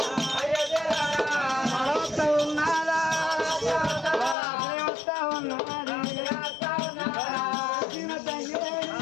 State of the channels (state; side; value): drops out; right; at 4.4 s